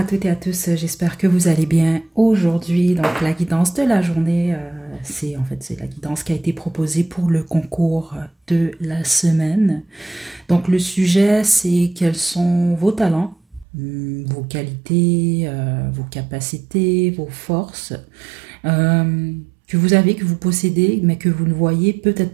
toutes et à tous. J'espère que vous allez bien aujourd'hui. Donc, la guidance de la journée, c'est la guidance qui a été proposée pour le concours de la semaine. Donc, le sujet, c'est quels sont vos talents, vos qualités, vos capacités, vos forces. Que vous avez, que vous possédez, mais que vous ne voyez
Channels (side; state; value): left; drops out; at 13.7 s